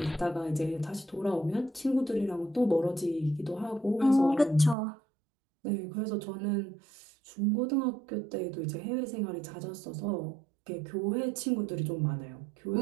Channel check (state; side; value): drops out; left; at 4.8 s